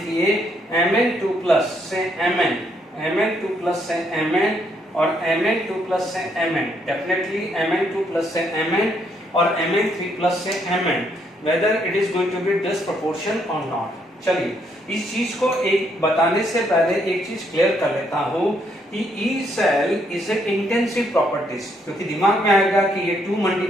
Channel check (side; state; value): both; normal; correlation 0.72